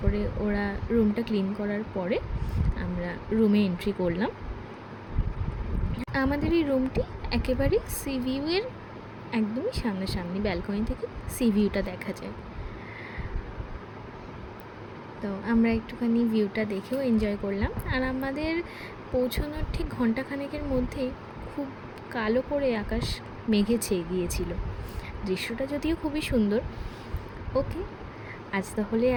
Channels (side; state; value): both; identical; correlation 1.00